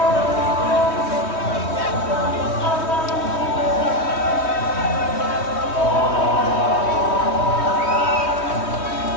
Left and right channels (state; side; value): late; right; 3.1 ms